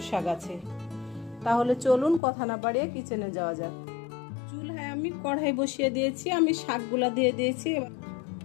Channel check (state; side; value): drops out; right; at 2.2 s